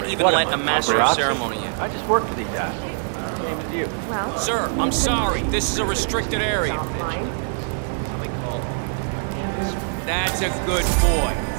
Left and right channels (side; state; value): left; silent; digital silence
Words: Raven even let look the master of program? ceremony. Sure. I just work for these What did he guys. do? I don't know. Same as you. Well, But Sir, I'm sorry. seemed This is a real restricted interested in area. this invention of his. Something called a kill switch. That's a good boy.